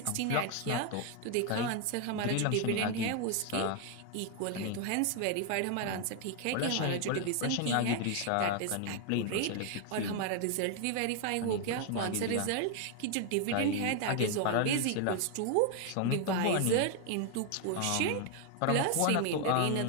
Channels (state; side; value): different; both; correlation 0.00